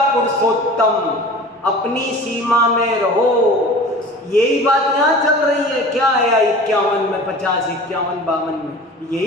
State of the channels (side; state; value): both; normal; correlation 0.40